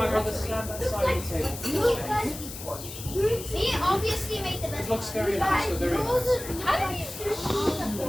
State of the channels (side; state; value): left; noise; hiss, 11 dB below the sound